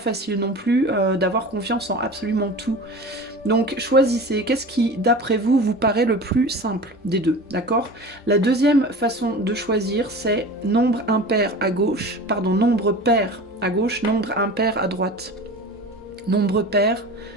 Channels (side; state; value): both; normal; correlation 0.35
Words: non plus d'avoir confiance en absolument tout. Donc choisissez, qu'est-ce qui d'après vous vous paraît le plus simple des deux, d'accord? La deuxième façon de choisir c'est nombre impair à gauche, pardon, nombre pair à gauche, nombre impair à droite. Nombre pair,